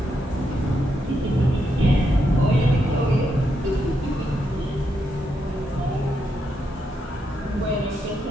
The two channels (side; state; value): both; normal; correlation 0.81